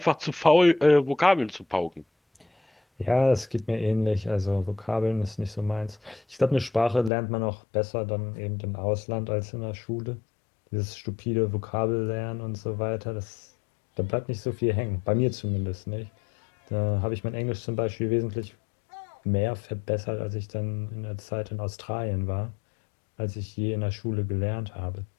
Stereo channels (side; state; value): right; drops out; at 7.1 s